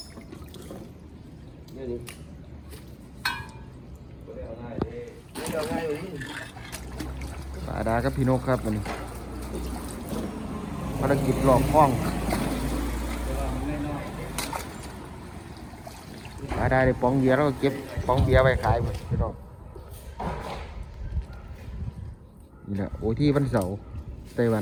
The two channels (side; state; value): both; identical; correlation 1.00